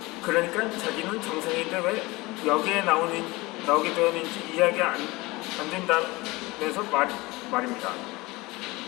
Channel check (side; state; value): right; quieter; 22.0 dB